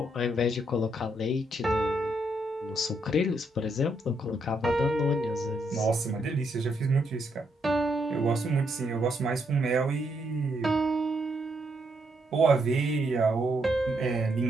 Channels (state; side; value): normal; both; correlation 0.76